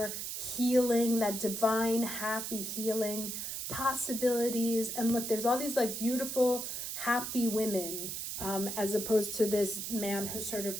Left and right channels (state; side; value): noise; right; hiss, 5 dB below the sound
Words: healing, that divine, happy healing possibilities. And look, there's all these like beautiful, happy women, as opposed to this man who's sort